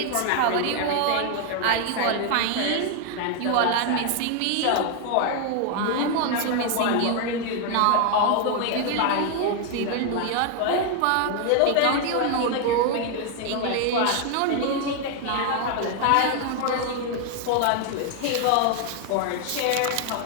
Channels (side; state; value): both; different; correlation 0.00